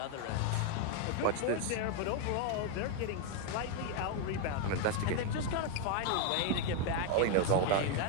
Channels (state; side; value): different; both; correlation 0.01